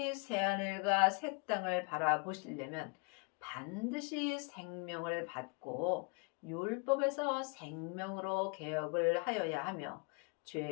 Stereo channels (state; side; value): quieter; right; 32.3 dB